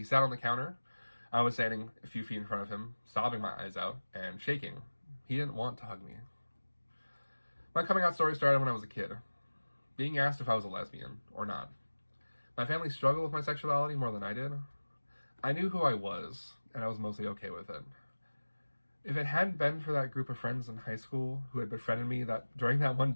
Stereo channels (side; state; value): both; inverted; correlation -1.00